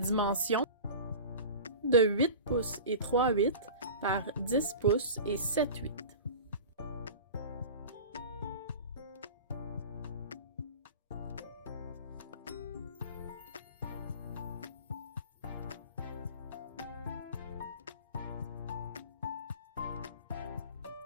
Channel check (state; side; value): inverted; both; correlation -0.35